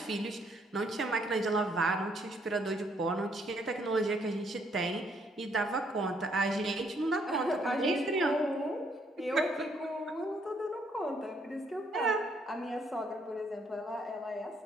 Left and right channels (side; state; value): both; normal; correlation 0.69